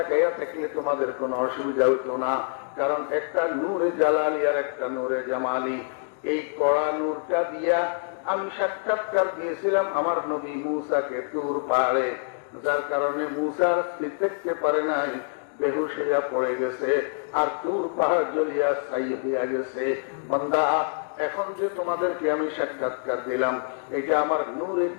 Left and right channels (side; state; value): right; silent; digital silence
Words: থাকলে তোমাদের কোনো অসুবিধা হতো না, কারণ একটা নূরে জালালি আর একটা নূরে জামালি। এই কড়া নূরটা দিয়া আমি সাক্ষাৎকার দিয়েছিলাম আমার নবী মূসাকে তুর পাহাড়ে, যার কারণে মূসার স্থির থাকতে পারে নাই, বেহুশ হইয়া পড়ে গেছে, আর তুর পাহাড় জ্বলিয়া ছাই হইয়া গেছে। বান্দা, এখন যে তোমাদেরকে আমি সাক্ষাৎকার দিলাম, এটা আমার নূরে